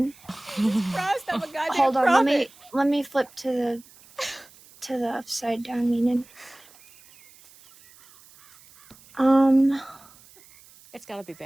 Christ, I'm a goddamn Hold on, prophet. let me flip to the upside down meaning. It's gotta be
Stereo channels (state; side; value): noise; right; hiss, 25 dB below the sound